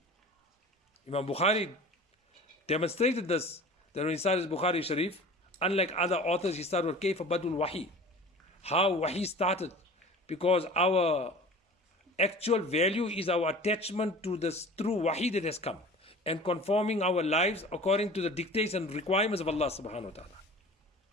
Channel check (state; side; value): normal; both; correlation 0.41